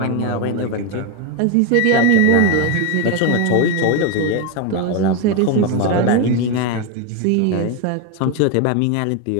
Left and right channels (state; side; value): different; both; correlation 0.02